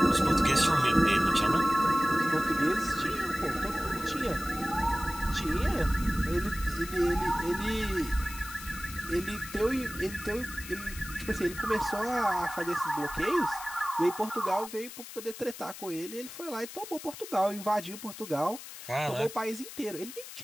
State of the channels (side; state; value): left; noise; hiss, 13 dB below the sound